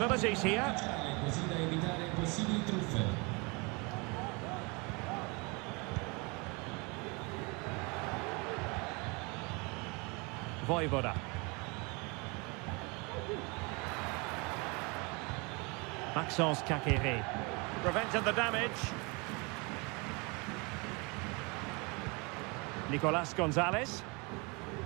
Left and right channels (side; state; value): left; quieter; 29.0 dB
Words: here. Vojvoda. Maxence Kakere. Prevented the damage. Nicolas Gonzalez.